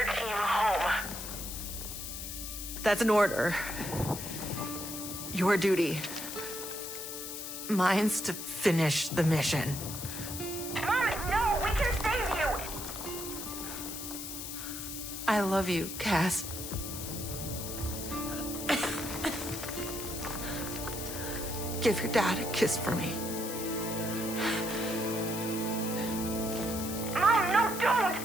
team home. That's an order. Your duty. Mine's to finish the mission. Mom, no! We can save you! I love you, Cass. Give your dad a kiss for me. Mom, no, don't!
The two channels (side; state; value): left; noise; hiss, 7 dB below the sound